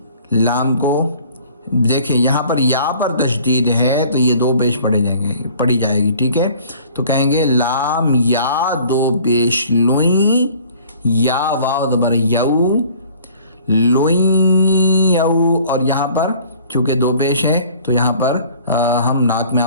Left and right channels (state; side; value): inverted; both; correlation -0.52